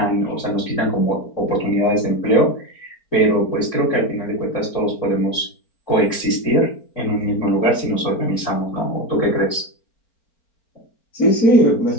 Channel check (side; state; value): right; late; 4.4 ms